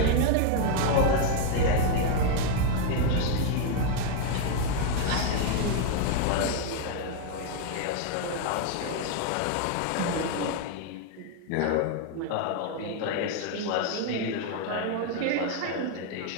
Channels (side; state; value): both; different; correlation 0.00